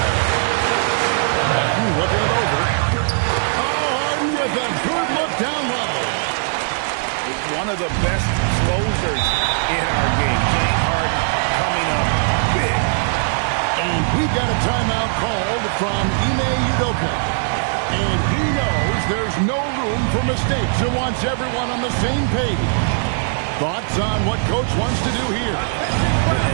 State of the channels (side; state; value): left; silent; digital silence